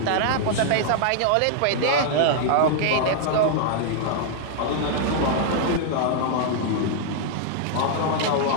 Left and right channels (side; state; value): both; different; correlation -0.01